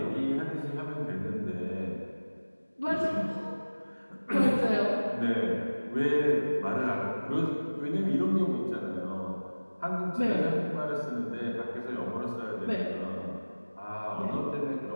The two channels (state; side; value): inverted; both; correlation -1.00